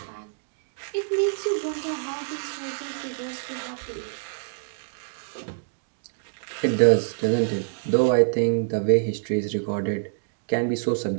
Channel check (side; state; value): left; silent; digital silence